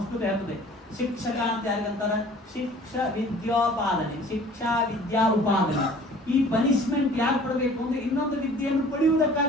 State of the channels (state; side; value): normal; both; correlation 0.49